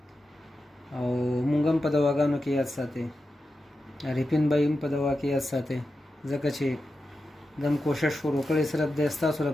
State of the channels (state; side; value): normal; both; correlation 0.90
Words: او مونږ هم په دواګانو کې یاد ساتئ عارفین بھائی هم په دوا کې یاد ساتئ ځکه چې دم کوشش شروع کړی صرف د ستاسو